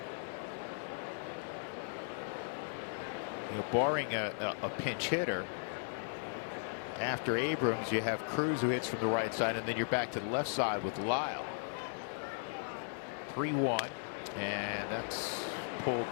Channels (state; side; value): silent; right; 53 dB below the other